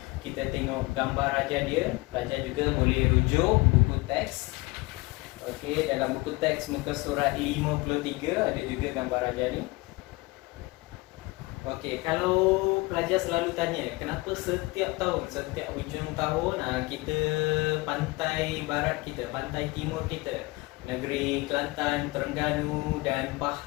kita tengok gambar raja dia. Pelajar juga boleh rujuk buku teks. Okey, dalam buku teks muka surat 53 ada juga gambar raja ni. Okey, kalau pelajar selalu tanya kenapa setiap tahun, setiap hujung tahun kita pantai barat kita, pantai timur kita, negeri Kelantan, Terengganu dan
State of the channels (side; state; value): right; quieter; 23.4 dB